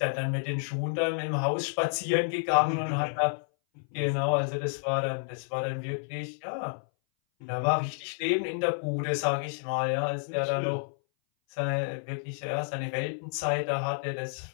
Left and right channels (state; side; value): silent; right; 58 dB below the other